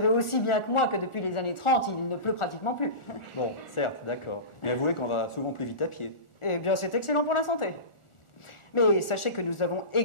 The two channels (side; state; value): right; late; 1.4 ms